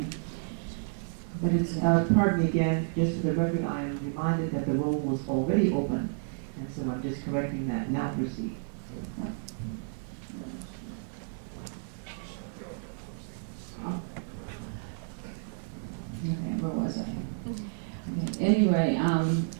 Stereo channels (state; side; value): silent; left; digital silence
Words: but it's Pardon me again, just for the record, I am reminded that the roll was already open, and so I'm just correcting that. Now proceed. Okay, where was I? Okay. Anyway,